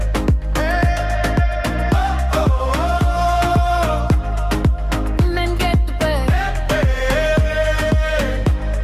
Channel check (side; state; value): both; identical; correlation 1.00